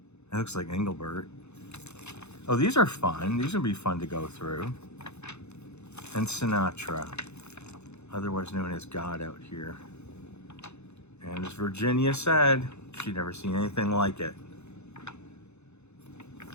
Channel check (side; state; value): right; late; 0.81 ms